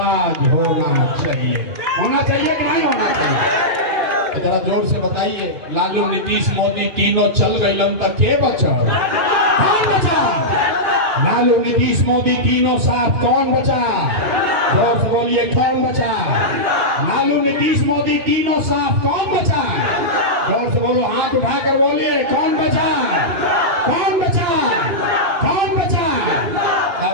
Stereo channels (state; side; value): late; left; 2.9 ms